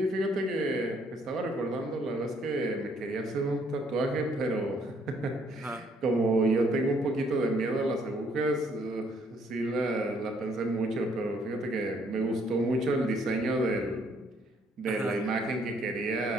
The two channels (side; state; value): both; normal; correlation 0.66